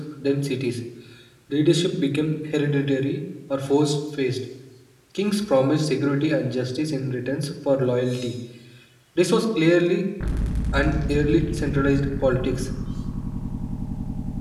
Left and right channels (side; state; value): both; identical; correlation 1.00